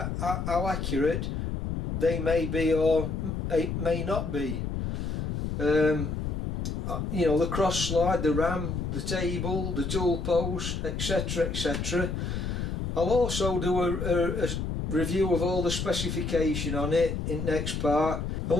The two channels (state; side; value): noise; left; rumble, 3 dB below the sound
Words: how accurate they may be or may not be. You know, the cross slide, the ram, the table, the tool post, etc, etc. I'll also do a review of all the specification on it in next part. And